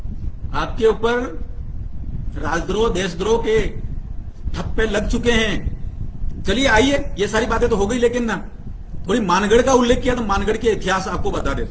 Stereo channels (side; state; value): both; identical; correlation 1.00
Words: आपके ऊपर राजद्रोह, देशद्रोह के ठप्पे लग चुके हैं। चलिए आइए, ये सारी बातें तो हो गई, लेकिन ना थोड़ी मानगढ़ का उल्लेख किया तो मानगढ़ के इतिहास आपको बता